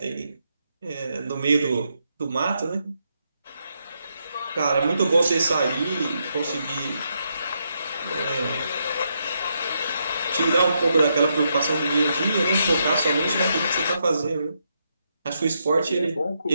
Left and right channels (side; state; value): both; inverted; correlation -0.80